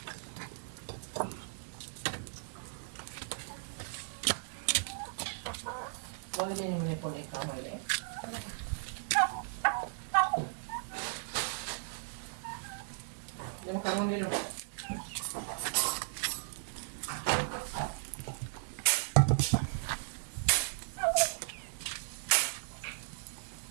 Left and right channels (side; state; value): left; silent; digital silence